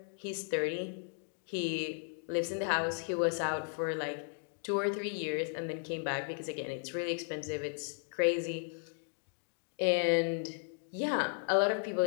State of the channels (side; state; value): right; silent; 54 dB below the other